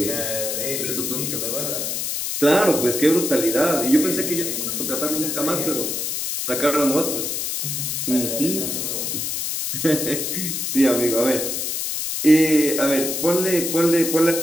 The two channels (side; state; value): left; noise; hiss, 2 dB below the sound